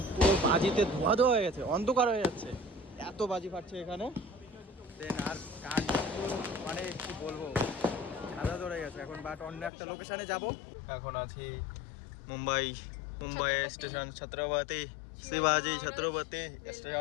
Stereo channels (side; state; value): right; drops out; at 9.7 s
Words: পুরো বাজিতে ধোয়া ধোয়া হয়ে গেছে, অন্ধকার হয়ে যাচ্ছে, এত বাজি ফাটছে এখানে। দেন আর কাজ মানে কি বলবো, খাদা ধরে গেছে এখন, বাট অন্য একটা লোকেশনে যাব। এখন আছি মুম্বাই স্টেশন, ছত্রপতি শিবাজি ছত্রপতি